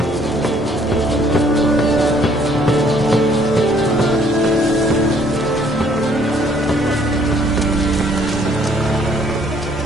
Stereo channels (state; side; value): normal; both; correlation 0.63